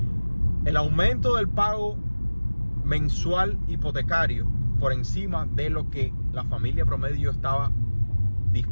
el aumento del pago mensual hipotecario por encima de lo que la familia promedio estaba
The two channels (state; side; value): inverted; both; correlation -1.00